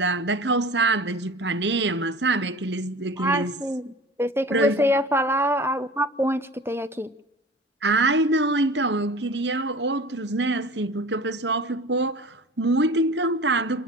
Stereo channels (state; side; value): normal; both; correlation 0.38